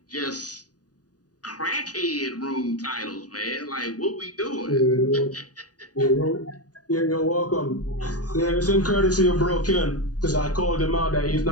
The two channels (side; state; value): right; late; 0.68 ms